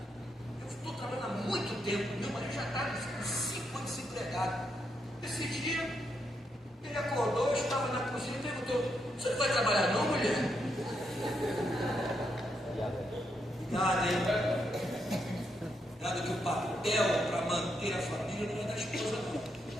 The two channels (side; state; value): both; normal; correlation 0.80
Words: eu estou trabalhando há muito tempo, meu marido já está em 5 anos desempregado. Esse dia ele acordou, eu estava na cozinha e perguntou: você não vai trabalhar não, mulher? Nada, hein? Nada, que o papel para manter a família não é da esposa, não.